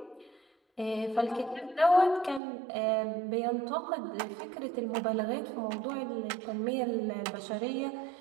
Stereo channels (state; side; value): drops out; left; at 2.4 s